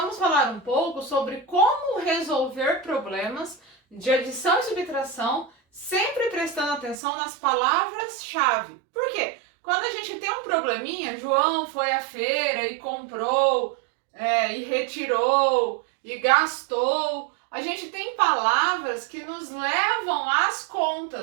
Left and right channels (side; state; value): left; drops out; at 7.0 s